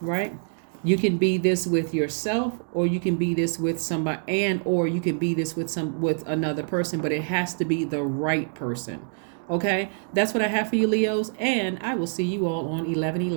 You can be this with yourself, or you can be this with somebody, or you can be this with another person, but it has to be the right person. Okay? That's what I have for you, Leos, and I will see you all on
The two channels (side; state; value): left; silent; digital silence